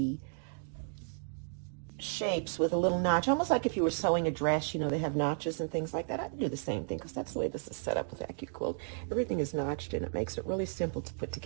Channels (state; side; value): silent; left; digital silence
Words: shapes with a little notch, almost like if you were sewing a dress, you know, they have notches and things like that. I'd do the same thing because that's the way this is set up with AccuQuilt. Everything is notched and it makes it really simple to put